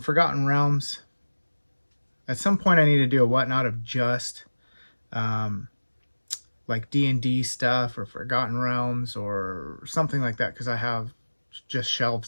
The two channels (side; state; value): both; inverted; correlation -1.00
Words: Realms. At some point I need to do a Whatnot of just like D&D stuff or Forgotten Realms or something like that, because I have just